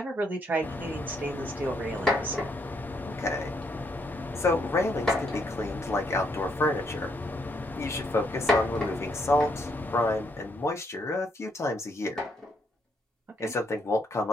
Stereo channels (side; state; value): both; normal; correlation 0.73